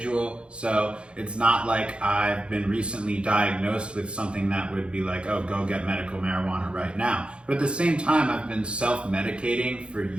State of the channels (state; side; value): late; left; 0.057 ms